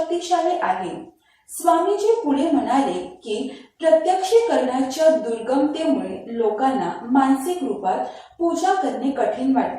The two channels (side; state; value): both; identical; correlation 1.00